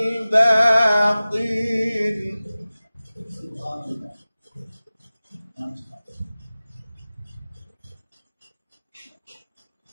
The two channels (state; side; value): inverted; both; correlation -0.97